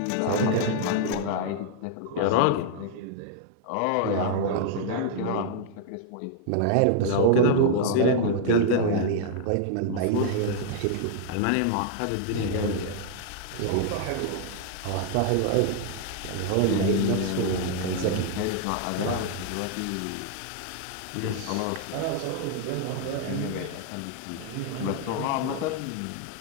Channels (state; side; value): different; both; correlation 0.00